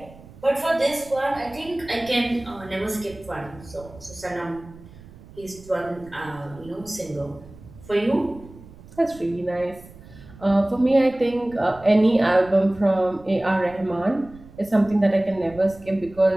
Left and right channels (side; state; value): right; noise; rumble, 20 dB below the sound